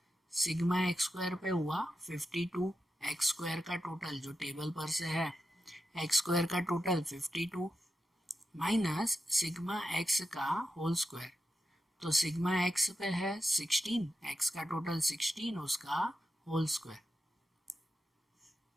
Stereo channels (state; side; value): normal; both; correlation 0.88